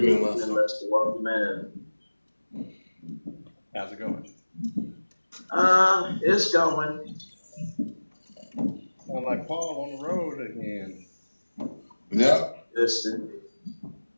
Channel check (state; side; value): inverted; both; correlation -1.00